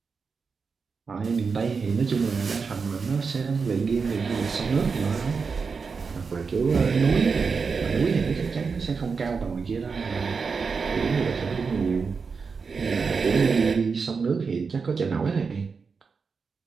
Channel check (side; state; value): left; quieter; 5.2 dB